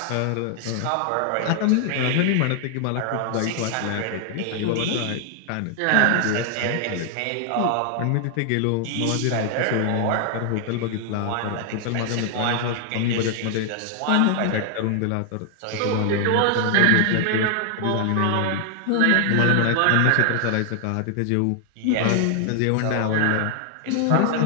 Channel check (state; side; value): different; both; correlation 0.00